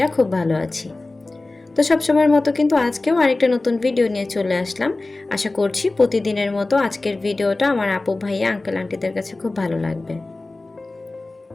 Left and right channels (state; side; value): quieter; right; 3.1 dB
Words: খুব ভালো আছি। তো সবসময়ের মতো কিন্তু আজকেও আরেকটা নতুন ভিডিও নিয়ে চলে আসলাম। আশা করছি প্রতিদিনের মতো আজকের ভিডিওটা আমার আপু ভাইয়া আঙ্কেল আন্টিদের কাছে খুব ভালো লাগবে।